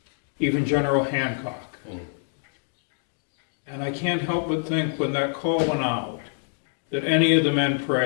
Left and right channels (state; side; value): silent; right; digital silence